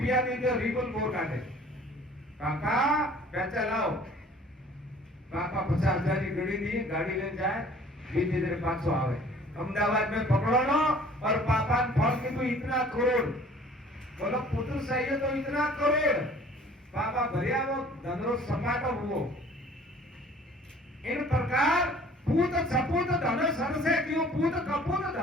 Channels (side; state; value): both; normal; correlation 0.51